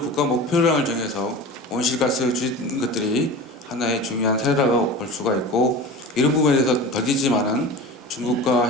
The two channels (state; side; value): normal; both; correlation 0.33